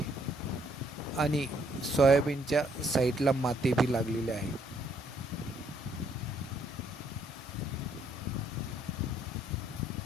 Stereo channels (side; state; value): both; normal; correlation 0.68